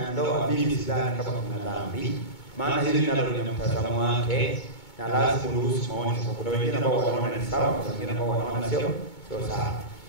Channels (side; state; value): right; late; 2.2 ms